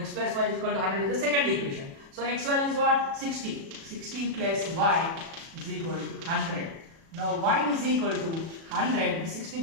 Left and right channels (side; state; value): left; late; 36 ms